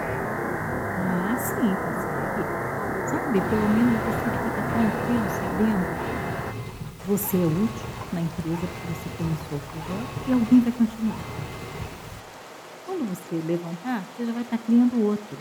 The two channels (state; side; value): identical; both; correlation 1.00